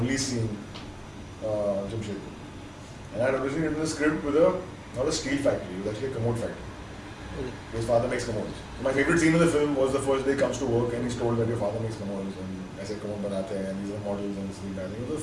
seeing Jamshedpur. And I had originally written the script with not a steel factory, it was actually a commode factory. Okay. His father makes commodes. So my favorite scene in the film was the first day he comes to work and he's told that your father makes commodes, and I said commode banate hain, and these are models and this thing. I think it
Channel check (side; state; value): both; identical; correlation 1.00